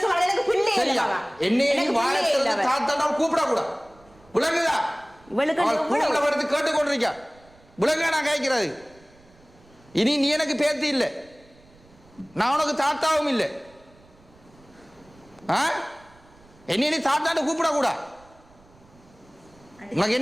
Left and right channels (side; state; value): right; noise; rumble, 28 dB below the sound